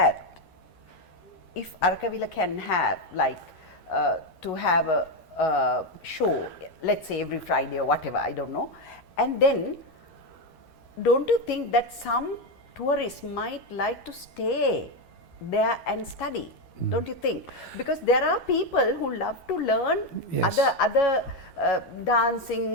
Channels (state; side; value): late; right; 12 ms